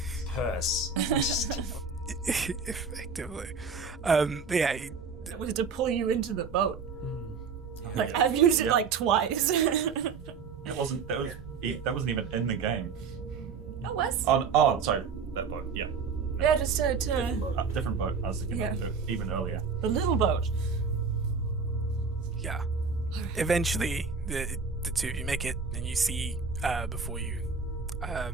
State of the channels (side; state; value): left; quieter; 5.4 dB